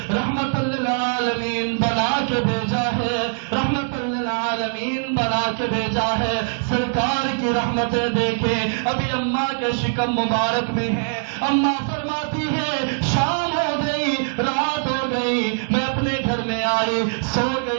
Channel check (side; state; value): left; silent; digital silence